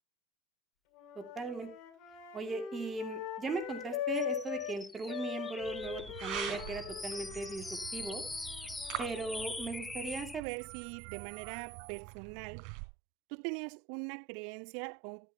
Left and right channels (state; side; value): drops out; left; at 10.4 s